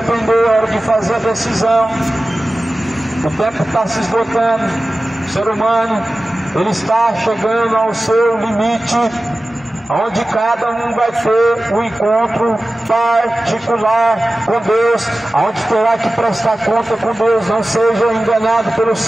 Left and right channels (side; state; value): both; normal; correlation 0.95